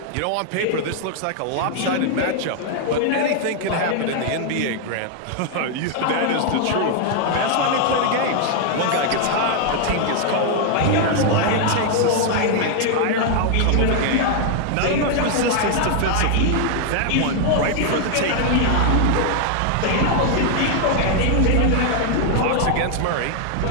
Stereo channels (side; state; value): both; different; correlation 0.00